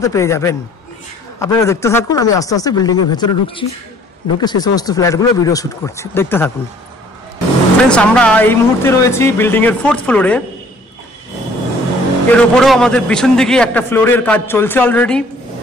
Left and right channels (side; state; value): both; normal; correlation 0.56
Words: পেয়ে যাবেন। আপনারা দেখতে থাকুন, আমি আস্তে আস্তে বিল্ডিংয়ের ভেতরে ঢুকছি, ঢুকে সেই সমস্ত ফ্ল্যাটগুলো ভিডিও শ্যুট করছি, দেখতে থাকুন। ফ্রেন্ডস আমরা এই মুহূর্তে রয়েছি বিল্ডিংয়ের 4th ফ্লোরে। এর উপরেও আমাদের পিছন দিকে একটা ফ্লোরের কাজ চলছে অলরেডি,